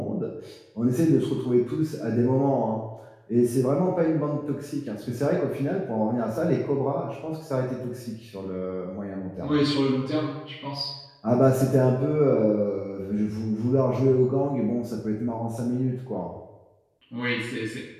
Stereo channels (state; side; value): identical; both; correlation 1.00